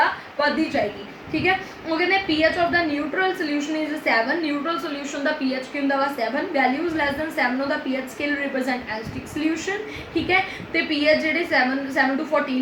बढ़ती जाएगी ठीक है। वो कहते PH of the neutral solution is 7। Neutral solution का PH की होंगे 7, values less than 7 of the PH scale represent acidic solution ठीक है। तो PH जो 7 to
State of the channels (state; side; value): identical; both; correlation 1.00